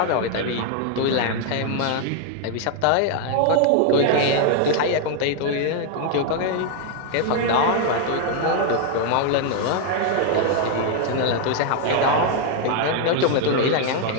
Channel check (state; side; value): different; both; correlation 0.00